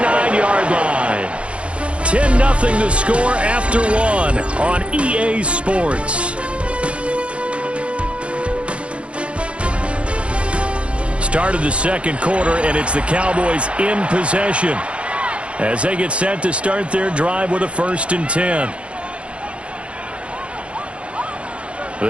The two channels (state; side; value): late; left; 0.060 ms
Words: line. 10-0 the score after one on EA Sports. Start of the second quarter, and it's the Cowboys in possession as they get set to start their drive with a 1st and 10.